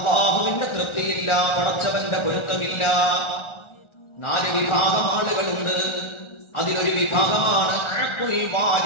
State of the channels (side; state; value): right; late; 1.4 ms